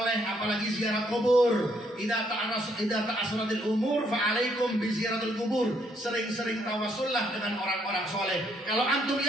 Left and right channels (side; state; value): both; normal; correlation 0.71